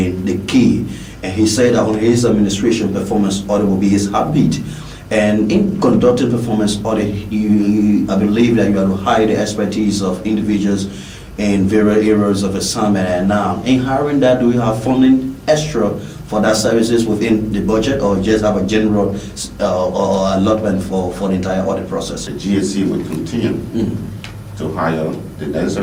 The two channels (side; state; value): both; identical; correlation 1.00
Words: the key. And he said that on his administration, performance audit will be his heartbeat. And in conducting performance audit, I believe that you have to hire the expertise of individuals in various areas of assignment. And now, in hiring that, do you have funding extra for that services within the budget, or just have a general or allotment for the entire audit process? The GSC will continue to hire the